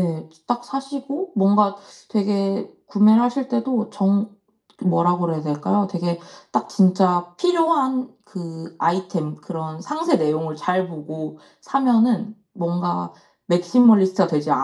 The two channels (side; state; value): both; identical; correlation 1.00